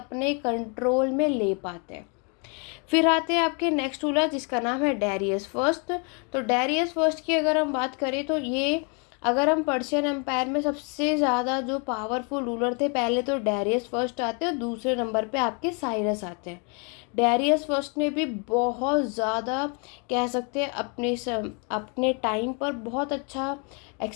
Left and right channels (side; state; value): right; quieter; 36.0 dB